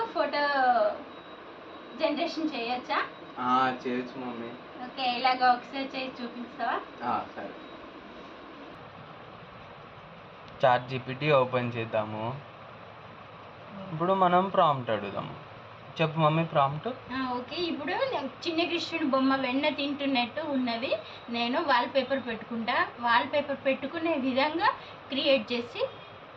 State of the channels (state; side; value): identical; both; correlation 1.00